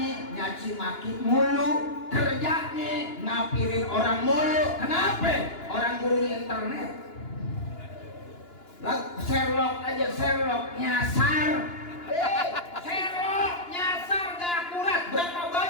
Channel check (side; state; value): right; late; 2.9 ms